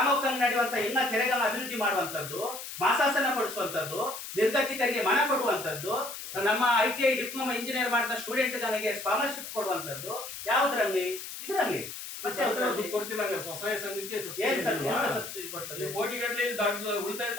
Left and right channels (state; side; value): noise; left; hiss, 9 dB below the sound